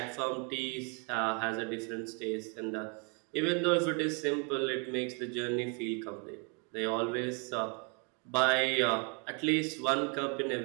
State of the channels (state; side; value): quieter; left; 35.7 dB